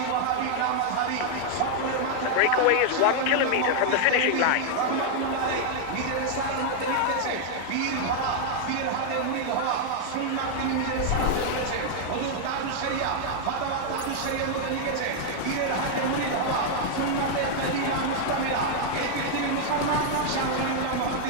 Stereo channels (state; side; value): different; both; correlation 0.00